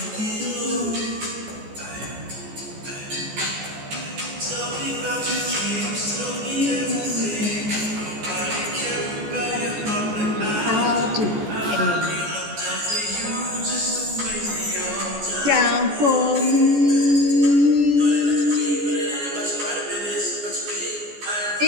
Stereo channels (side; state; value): left; late; 14 ms